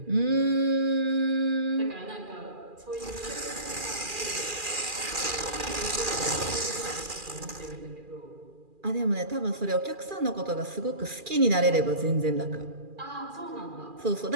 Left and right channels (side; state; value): left; late; 2.4 ms